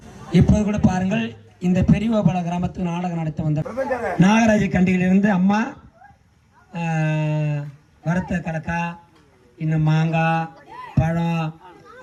இப்போது கூட பாருங்கள், இந்த பெரியவபால கிராமத்துக்கு நாடகம் நடத்த வந்த நாகராஜ கண்டியிலிருந்து அம்மா வறுத்த கடக்கா, இன்னும் மாங்காய், பழம்,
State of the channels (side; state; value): both; identical; correlation 1.00